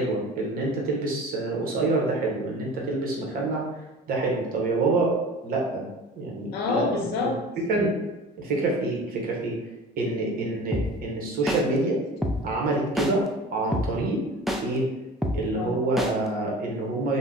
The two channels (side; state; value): both; normal; correlation 0.39